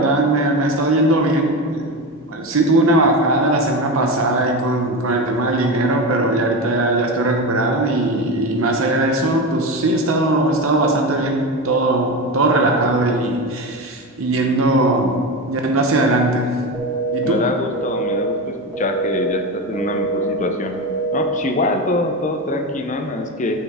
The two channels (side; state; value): both; normal; correlation 0.21